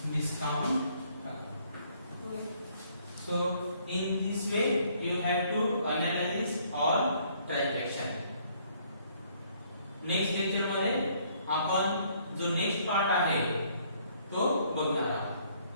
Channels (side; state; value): both; inverted; correlation -0.64